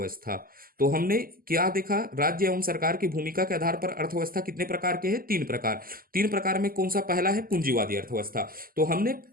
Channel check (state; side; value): late; left; 0.42 ms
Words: तो हमने क्या देखा? राज्य एवं सरकार की भूमिका के आधार पर अर्थव्यवस्था कितने प्रकार के हैं? 3 प्रकार। 3 प्रकार में कौन सा पहला है? पूंजीवादी अर्थव्यवस्था। तो हमने